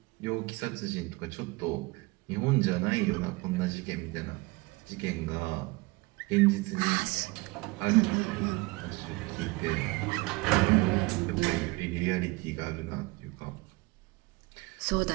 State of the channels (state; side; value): quieter; left; 24.5 dB